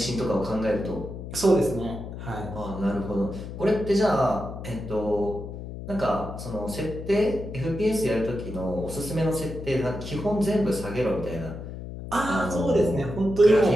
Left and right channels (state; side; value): noise; left; hum, 9 dB below the sound